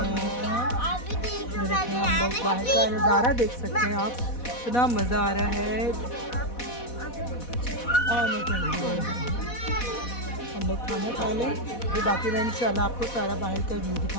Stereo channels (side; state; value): right; late; 4.1 ms